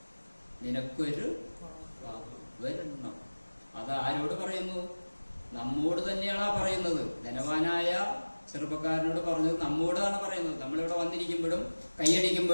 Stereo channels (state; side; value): inverted; both; correlation -1.00